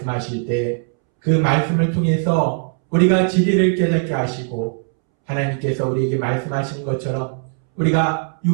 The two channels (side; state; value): left; silent; 66 dB below the other